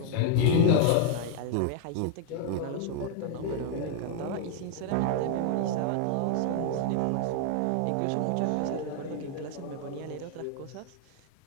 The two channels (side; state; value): both; different; correlation 0.00